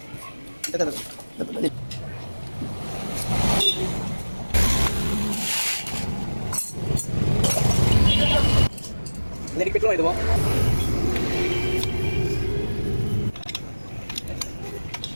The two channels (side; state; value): both; inverted; correlation -1.00